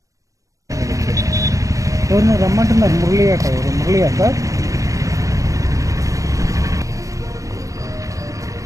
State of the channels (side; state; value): left; late; 0.16 ms